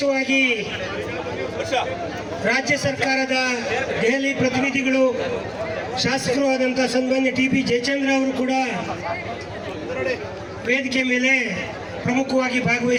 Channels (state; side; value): identical; both; correlation 1.00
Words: ರಾಜ್ಯ ಸರ್ಕಾರದ ದೆಹಲಿ ಪ್ರತಿನಿಧಿಗಳು, ಶಾಸಕರು ಆದಂಥ ಸನ್ಮಾನ್ಯ TP ಜಯಚಂದ್ರ ಅವರು ಕೂಡ ವೇದಿಕೆ ಮೇಲೆ ಪ್ರಮುಖವಾಗಿ